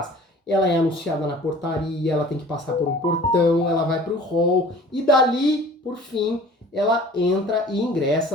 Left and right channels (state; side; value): normal; both; correlation 0.46